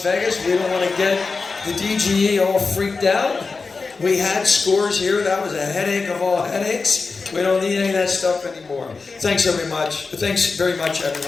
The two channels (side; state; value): right; quieter; 4.3 dB